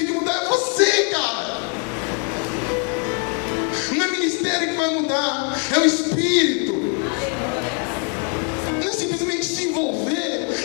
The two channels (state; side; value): quieter; right; 39.5 dB